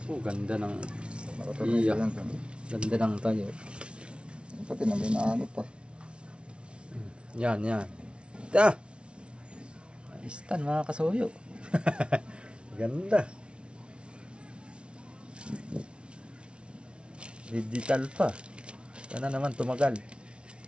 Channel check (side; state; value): left; late; 0.058 ms